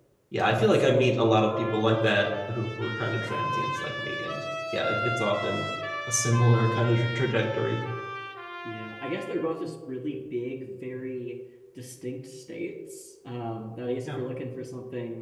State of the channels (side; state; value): both; identical; correlation 1.00